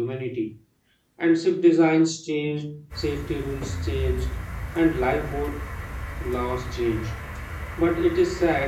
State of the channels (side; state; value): both; identical; correlation 1.00